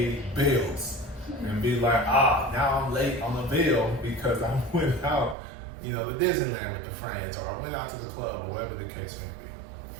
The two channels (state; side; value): drops out; left; at 5.4 s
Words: bills and be like, now I'm late on the bill because I went out, to Disneyland with the friends, or I went out to the club, or whatever the case may be.